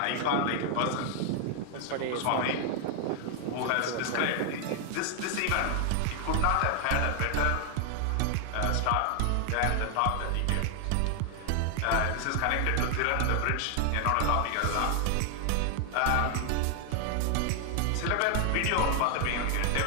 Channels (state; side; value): different; both; correlation 0.00